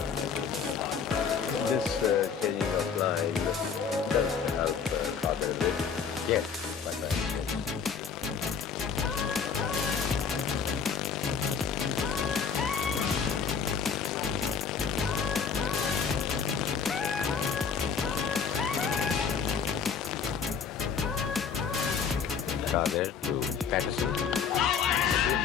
This changing of line does help Qadir a bit. Yes, quite right. Qadir to Patterson.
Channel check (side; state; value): right; quieter; 6.4 dB